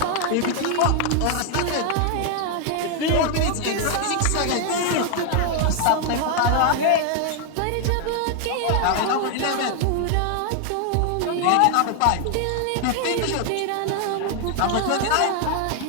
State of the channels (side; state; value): both; different; correlation 0.00